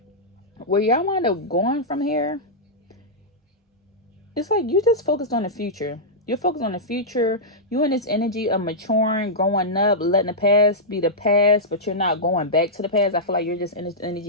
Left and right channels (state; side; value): normal; both; correlation -0.11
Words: where y'all wind up going from here, it's like you just focused on the future. You're focused on the future. You in this energy of maturing, growing up, letting the past be the past, but you're not going back to the past. I feel like you're just in this